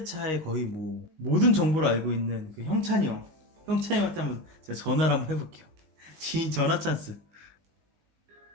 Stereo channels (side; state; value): left; late; 19 ms